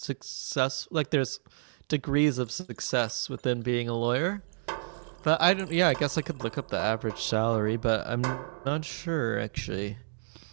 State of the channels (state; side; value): silent; left; digital silence